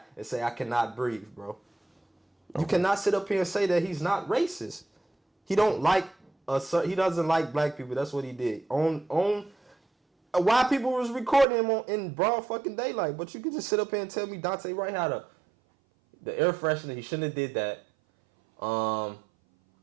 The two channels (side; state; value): left; drops out; at 11.5 s